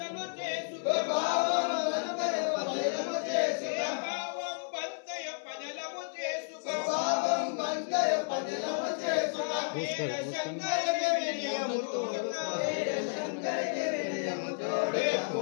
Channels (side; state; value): right; silent; 56 dB below the other